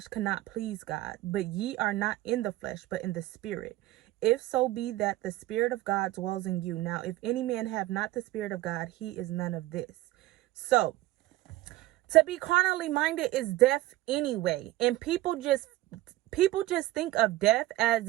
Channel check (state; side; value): quieter; left; 16.5 dB